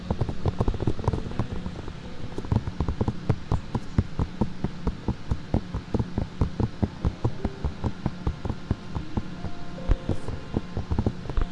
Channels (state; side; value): identical; both; correlation 1.00